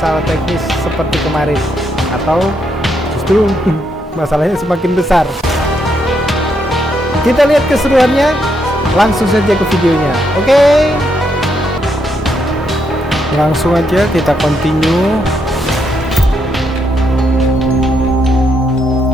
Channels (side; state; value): both; normal; correlation 0.78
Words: teknis seperti kemarin, atau justru masalahnya semakin besar. Kita lihat keseruannya. Langsung saja ke videonya. Oke. Langsung aja kita continue.